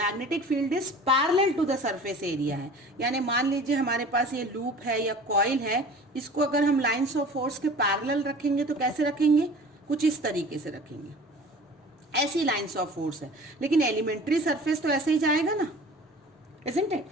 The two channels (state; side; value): normal; both; correlation 0.43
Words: field is parallel to the surface area है, यानी मान लीजिए हमारे पास ये लूप है या कॉइल है, इसको अगर हम लाइंस ऑफ फोर्स के पैरेलल रखेंगे तो कैसे रखेंगे, कुछ इस तरीके से रखेंगे. ऐसी लाइंस ऑफ फोर्स है, लेकिन एलिमेंट्री सरफेस तो ऐसे ही जाएगा ना, isn't it?